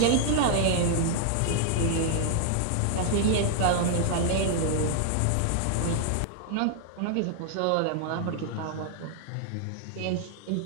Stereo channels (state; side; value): different; both; correlation 0.00